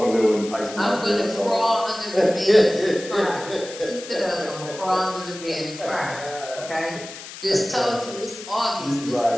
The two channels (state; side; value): noise; left; hiss, 13 dB below the sound